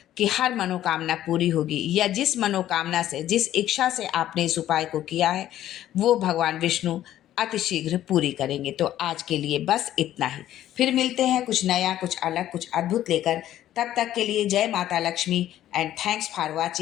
कि हर मनोकामना पूरी होगी, या जिस मनोकामना से, जिस इच्छा से आपने इस उपाय को किया है, वो भगवान विष्णु अतिशीघ्र पूरी करेंगे। तो आज के लिए बस इतना ही। फिर मिलते हैं कुछ नया, कुछ अलग, कुछ अद्भुत लेकर। तब तक के लिए जय माता Lakshmi and thanks for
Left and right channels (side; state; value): right; quieter; 12.6 dB